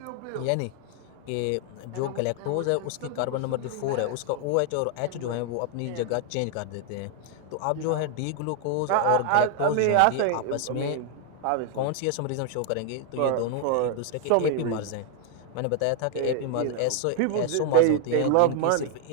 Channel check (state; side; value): different; both; correlation 0.00